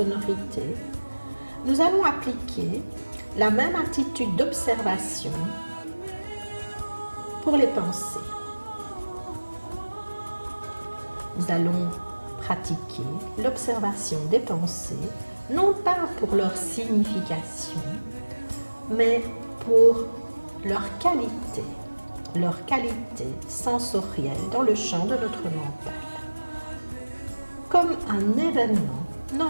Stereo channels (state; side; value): inverted; both; correlation -1.00